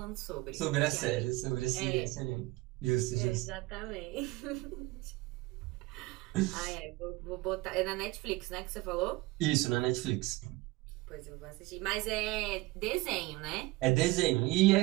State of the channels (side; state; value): left; quieter; 21.0 dB